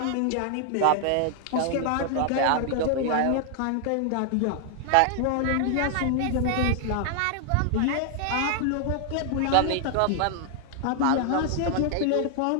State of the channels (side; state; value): both; different; correlation 0.00